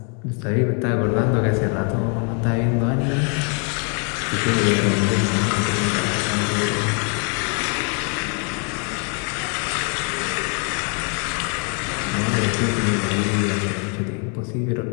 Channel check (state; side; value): quieter; right; 39.7 dB